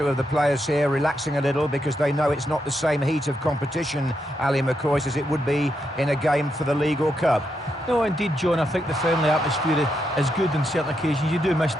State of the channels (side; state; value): both; normal; correlation 0.82